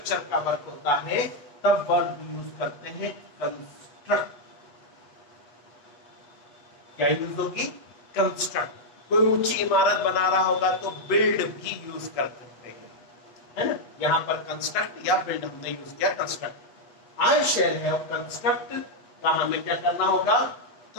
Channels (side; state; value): right; late; 8.3 ms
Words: का वर्क होता है, तब वर्ब यूज करते हैं कंस्ट्रक्ट। क्या यूज होगी? कंस्ट्रक्ट। कोई ऊंची इमारत बना रहा होगा तो बिल्ड भी यूज कर सकते हैं, है ना। यहां पर कंस्ट्रक्ट या बिल्ड हमने यूज किया construct. I shall have construct का हमें क्या करना होगा?